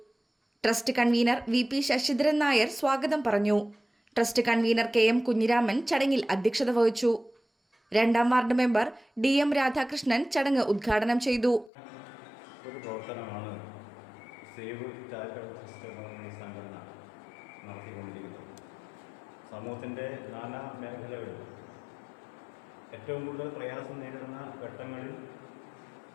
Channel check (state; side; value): drops out; right; at 11.7 s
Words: Trust convener VP Sasidharan Nair സ്വാഗതം പറഞ്ഞു. ട്രസ്റ്റ് കൺവീനർ KM കുഞ്ഞിരാമൻ ചടങ്ങിൽ അധ്യക്ഷത വഹിച്ചു. 2ാം വാർഡ് മെമ്പർ DM രാധാകൃഷ്ണൻ ചടങ്ങ് ഉദ്ഘാടനം ചെയ്തു. ഒരു പ്രവർത്തനമാണ് സേവ് ചാരിറ്റബിൾ ട്രസ്റ്റ് എന്ന സംഘടന നടത്തിക്കൊണ്ടിരിക്കുന്നത്. സമൂഹത്തിൻ്റെ നാനാ മേഖലകളിൽ ഏറ്റവും കൂടുതൽ പ്രയാസം നേരിടുന്ന ഘട്ടങ്ങളിൽ